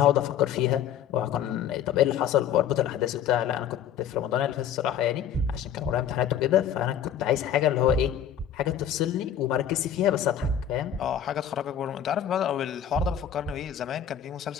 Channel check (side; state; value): right; quieter; 9.3 dB